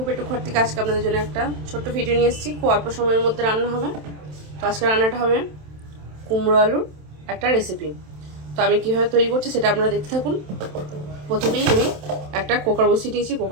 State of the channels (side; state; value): left; late; 27 ms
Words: ঘর থেকে আজকে আপনাদের জন্য একটা ছোট্ট ভিডিও নিয়ে এসেছি। খুব অল্প সময়ের মধ্যে রান্না হবে। তো আজকে রান্নাটা হবে কুমড়ো আলুর একটা রেসিপি। তো আমি কীভাবে তৈরি করছি সেটা আপনারা দেখতে থাকুন। প্রথমেই আমি একটা কুকার বসিয়ে দিয়েছি।